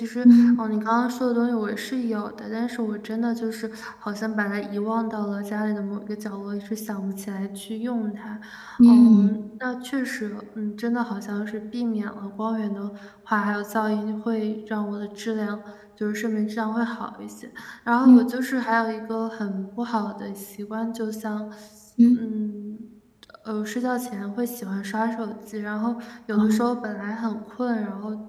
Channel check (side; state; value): both; identical; correlation 1.00